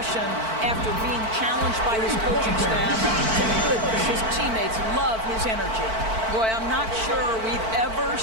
after being challenged by his coaching staff. Goodness, his teammates love his energy. Boy, I'm not sure we've ever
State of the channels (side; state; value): left; late; 4.5 ms